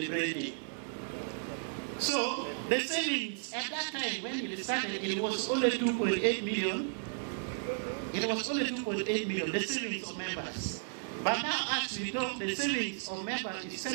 So, the savings at that time when it started, it was only 2.8 million. It was only 2.8 million, the savings of members. But now, as we talk, the savings of members is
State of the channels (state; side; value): silent; left; 55 dB below the other